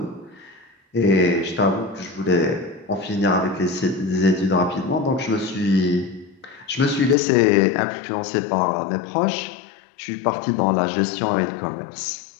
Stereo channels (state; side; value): drops out; right; at 7.2 s